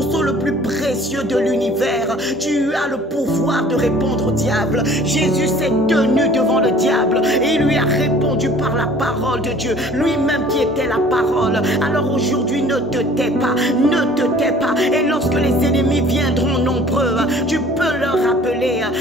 le plus précieux de l'univers. Tu as le pouvoir de répondre au diable. Jésus s'est tenu devant le diable et il lui a répondu par la parole de Dieu, lui-même qui était la parole. Alors aujourd'hui, ne te tais pas, ne te tais pas. Et lorsque les ennemis viendront nombreux, tu peux leur rappeler,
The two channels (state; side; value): normal; both; correlation 0.51